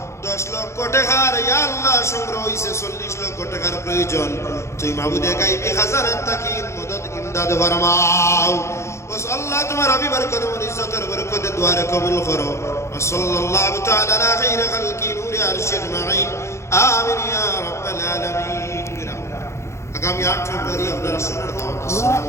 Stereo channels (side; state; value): right; late; 0.13 ms